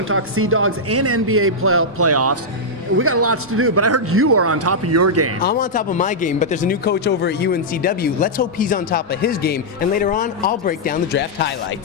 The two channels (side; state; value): both; normal; correlation -0.08